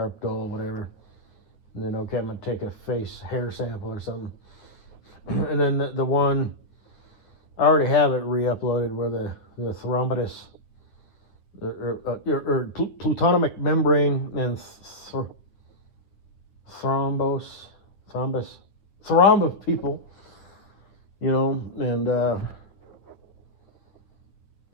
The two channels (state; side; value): late; right; 9.9 ms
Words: dull, whatever. And then, okay, I'm going to take a face hair sample or something. And then the one, I already have it re-uploaded, where the thrombotus, or plutonic membrane and thrombus people, and